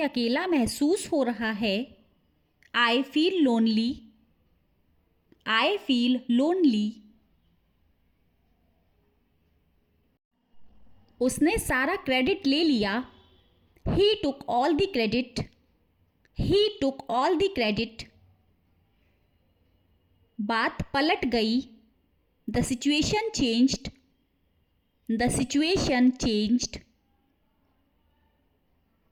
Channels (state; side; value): identical; both; correlation 1.00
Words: अकेला महसूस हो रहा है. I feel lonely. I feel lonely. उसने सारा क्रेडिट ले लिया। He took all the credit. He took all the credit. बात पलट गई। The situation changed. The situation changed.